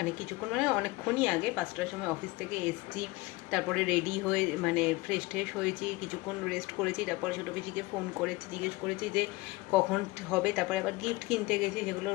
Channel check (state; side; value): quieter; right; 21.6 dB